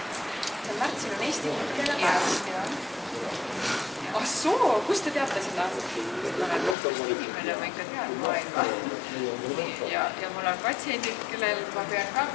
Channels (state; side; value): drops out; right; at 6.8 s